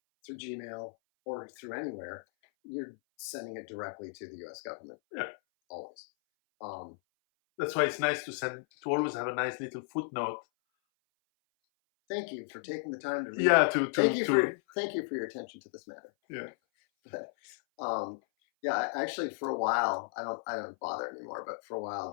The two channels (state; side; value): silent; right; 55 dB below the other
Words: through Gmail or through anywhere, you're sending it directly to the U.S. government. Yeah. Always. That's why it's nice to always have a nice little footnote. Thank you for taking the time to read. Yeah, thank you for your attention to this matter. Yeah. But yeah, actually, for a while, I don't bother anymore. But for a while,